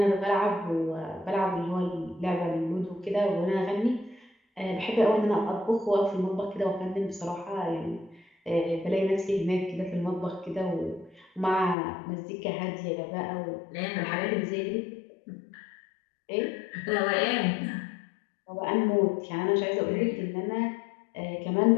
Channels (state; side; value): drops out; right; at 11.8 s